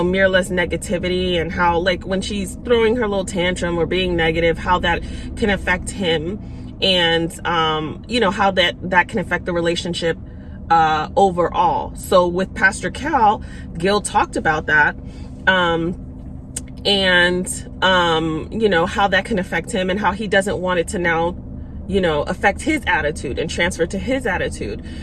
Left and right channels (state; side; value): identical; both; correlation 1.00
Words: negativity, and how when she's throwing her little tantrum or being negative, how that can affect him, and how that can affect the relationship overall. So with Pastor Cal, Gil talked about that, and how that can affect him and how he doesn't want it to now affect his attitude and transfer to his attitude.